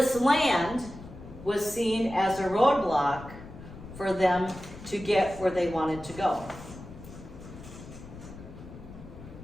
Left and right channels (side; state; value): left; noise; rumble, 15 dB below the sound